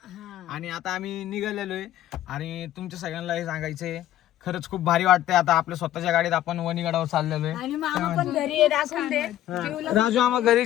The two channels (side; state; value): right; quieter; 13.0 dB